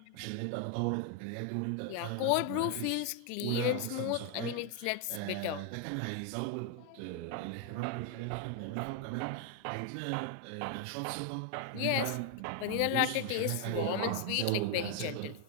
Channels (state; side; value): different; both; correlation 0.01